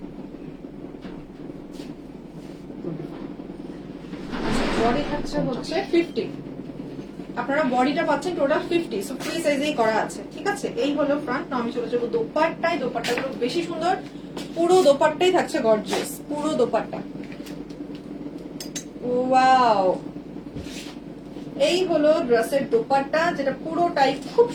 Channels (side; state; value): both; identical; correlation 1.00